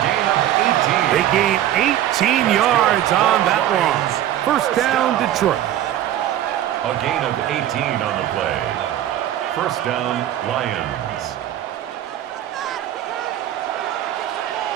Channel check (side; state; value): left; quieter; 12.2 dB